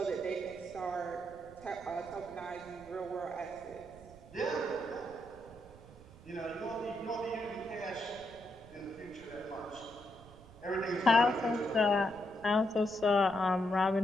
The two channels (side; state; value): right; noise; rumble, 20 dB below the sound